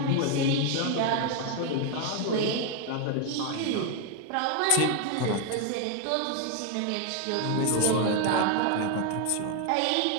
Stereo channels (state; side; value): different; both; correlation 0.01